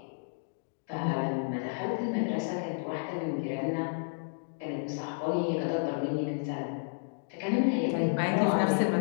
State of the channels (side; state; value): right; silent; digital silence